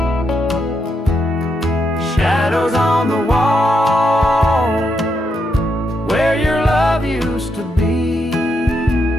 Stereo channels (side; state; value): both; normal; correlation 0.81